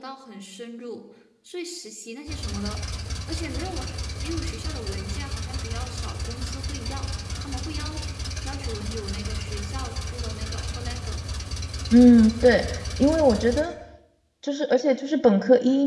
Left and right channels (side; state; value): both; identical; correlation 1.00